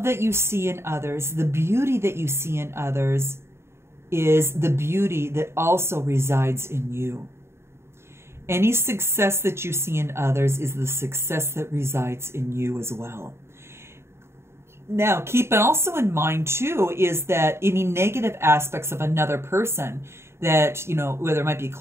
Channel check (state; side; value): late; left; 0.12 ms